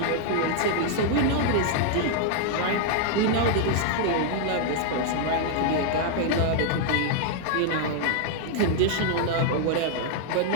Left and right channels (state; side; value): different; both; correlation 0.00